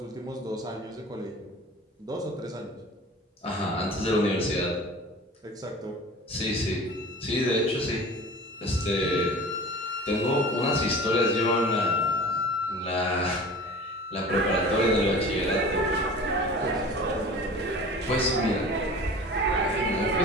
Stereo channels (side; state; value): both; normal; correlation 0.39